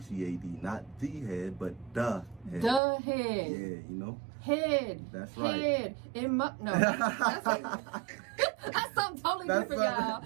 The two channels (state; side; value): drops out; left; at 2.8 s